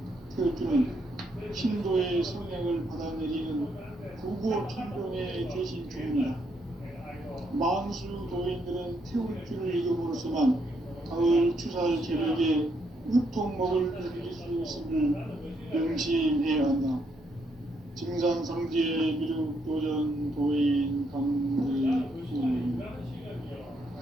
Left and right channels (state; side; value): normal; both; correlation 0.75